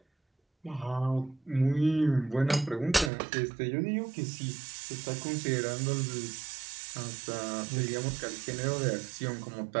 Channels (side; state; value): left; drops out; at 3.1 s